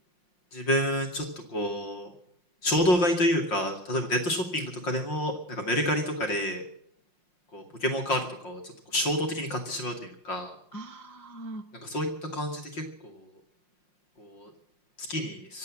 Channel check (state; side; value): late; right; 5.7 ms